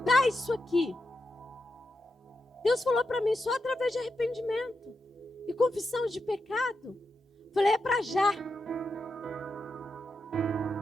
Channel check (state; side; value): normal; both; correlation 0.87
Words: isso aqui? Deus falou para mim, só através de arrependimento e confissão de pecado. Falei, é para já.